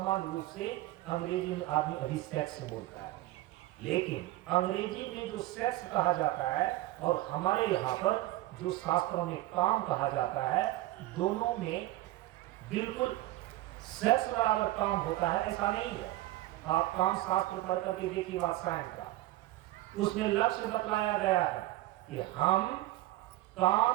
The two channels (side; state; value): left; quieter; 16.6 dB